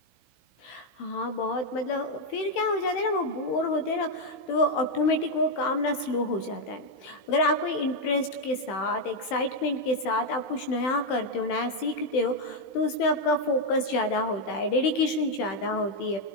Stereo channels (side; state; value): right; late; 16 ms